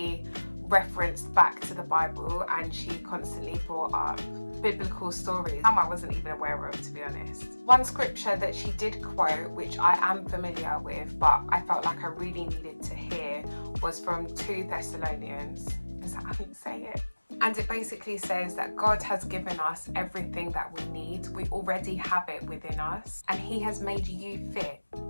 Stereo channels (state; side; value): inverted; both; correlation -1.00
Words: referenced back to the Bible, and she constantly brought up biblical stories some I wasn't even aware of, to be honest. One scripture that she did quote, which I am familiar with but I felt like I really needed to hear, was from 2 Thessalonians. Is that how you say it? And it basically says that God has given us everything that we need. We already have it within us, and he has made you fit